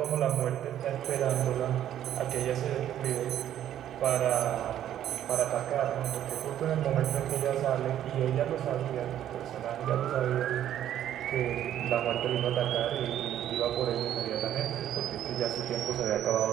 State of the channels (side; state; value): left; quieter; 11.2 dB